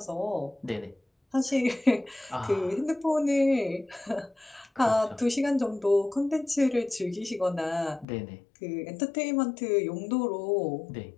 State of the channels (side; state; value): right; drops out; at 8.1 s